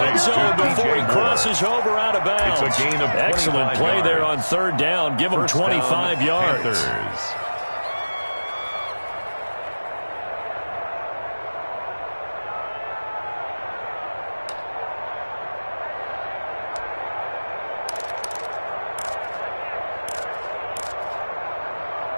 zone before he crosses over out of bounds. It's a gain of excellent play yards. there on 3rd down. Give him 25 yards. Panthers.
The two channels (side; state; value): both; inverted; correlation -1.00